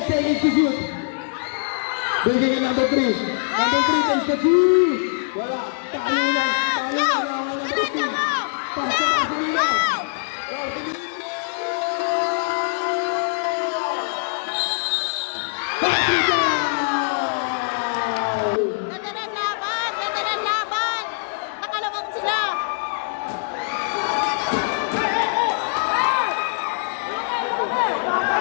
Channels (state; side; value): silent; right; digital silence